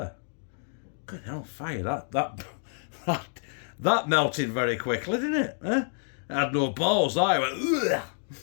Good hell, fire! That melted very quickly, didn't it? Huh? It had no balls. I went. Ugh.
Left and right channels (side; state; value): right; silent; digital silence